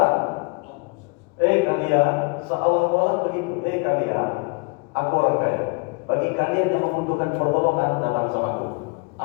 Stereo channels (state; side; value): quieter; right; 32.9 dB